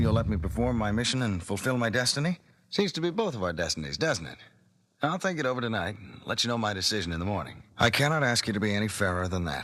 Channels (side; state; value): both; identical; correlation 1.00